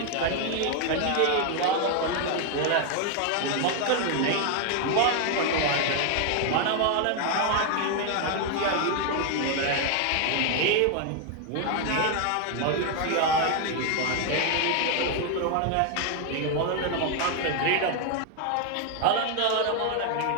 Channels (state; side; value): different; both; correlation 0.01